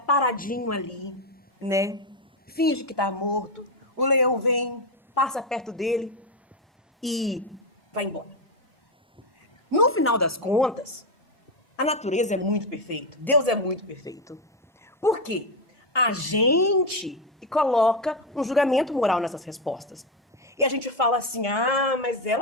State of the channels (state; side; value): normal; both; correlation 0.09